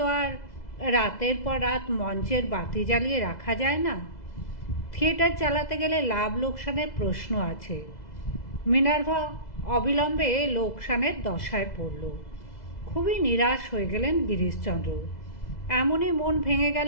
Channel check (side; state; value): right; late; 2.0 ms